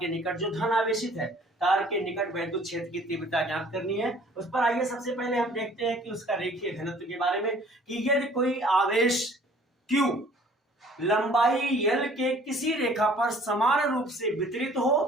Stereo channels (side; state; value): both; normal; correlation 0.54